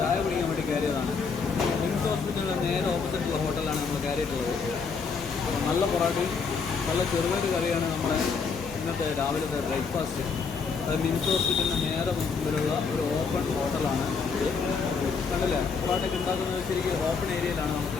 കുടിക്കാൻ വേണ്ടി കയറിയതാണ്. മിംസ് ഹോസ്പിറ്റലിൻ്റെ നേരെ ഓപ്പോസിറ്റുള്ള ഹോട്ടലാണ് നമ്മൾ കയറിയിട്ടുള്ളത്. നല്ല പൊറോട്ടയും നല്ല ചെറുപയർ കറിയാണ് നമ്മുടെ ഇന്നത്തെ രാവിലത്തെ ബ്രേക്ക്ഫാസ്റ്റ്. അത് മിംസ് ഹോസ്പിറ്റലിൻ്റെ നേരെ മുമ്പിലുള്ള ഒരു ഓപ്പൺ ഹോട്ടലാണ്. കണ്ടില്ലേ, പൊറോട്ടയ്ക്ക് ഉണ്ടാക്കുന്നത് ശരിക്കും ഓപ്പൺ ഏരിയയിലാണ് നമുക്ക്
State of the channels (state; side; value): quieter; right; 5.3 dB